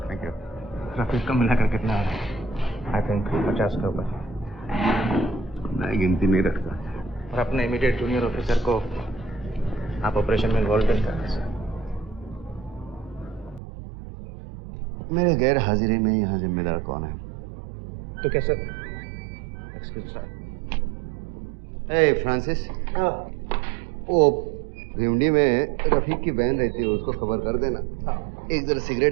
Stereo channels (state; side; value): drops out; left; at 13.6 s